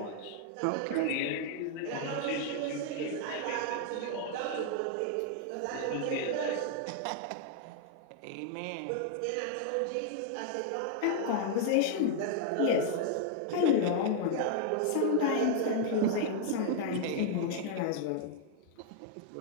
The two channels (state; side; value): different; both; correlation -0.01